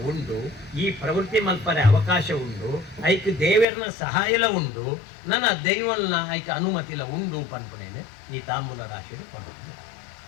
ಉಂಡು ಈ ಪ್ರವೃತ್ತಿ ಮಲ್ಪರೆ ಅವಕಾಶ ಉಂಡು ಐಕ್ ದೇವರನ ಸಹಾಯಲ ಉಂಡು ನನ್ನ ದೈವಲ್ನ ಐಕ್ ಅನುಮತಿಲ ಉಂಡು ಪನ್ಪುನೇನೆ ಈ ತಾಂಬೂಲ ರಾಶಿ ಪನ್ಪುನೆ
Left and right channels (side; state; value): right; drops out; at 3.7 s